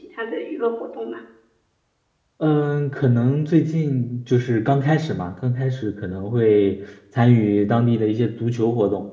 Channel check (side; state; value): both; identical; correlation 1.00